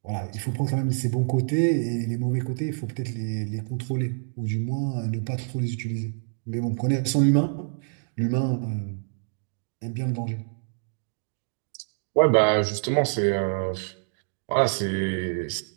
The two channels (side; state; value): left; silent; digital silence